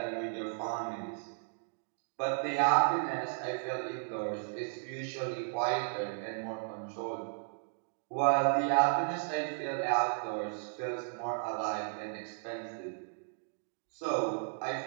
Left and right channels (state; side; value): silent; left; digital silence